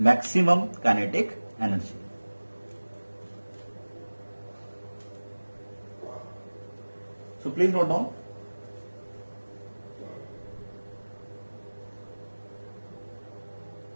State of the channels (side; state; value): both; inverted; correlation -1.00